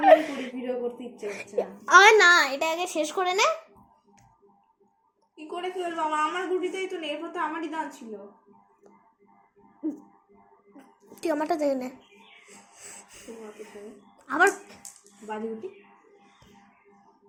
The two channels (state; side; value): identical; both; correlation 1.00